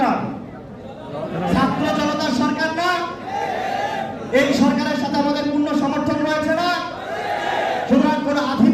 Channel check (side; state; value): both; identical; correlation 1.00